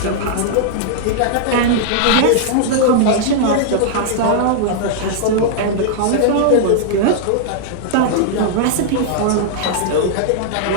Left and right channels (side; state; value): both; different; correlation -0.01